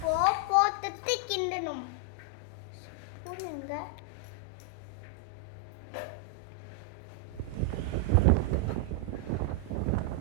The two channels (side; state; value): both; different; correlation 0.00